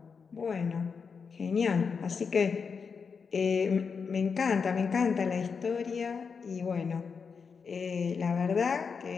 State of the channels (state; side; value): quieter; right; 5.7 dB